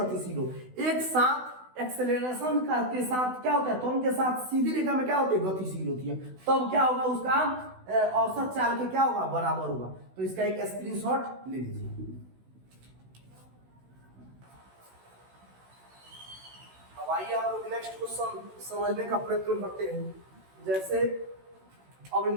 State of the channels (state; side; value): late; left; 16 ms